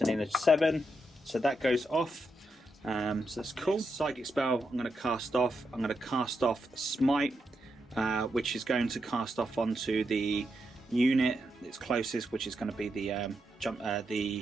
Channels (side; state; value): both; normal; correlation 0.84